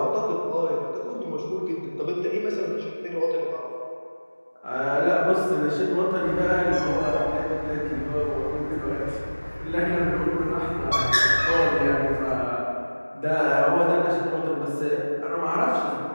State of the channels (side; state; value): both; inverted; correlation -1.00